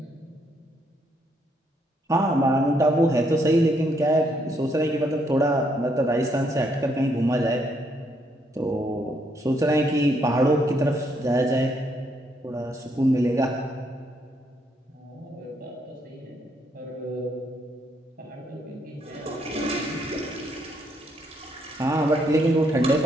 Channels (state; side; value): normal; both; correlation 0.73